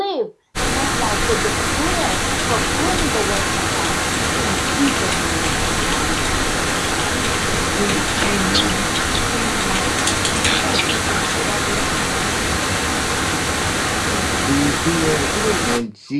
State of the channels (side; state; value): both; identical; correlation 1.00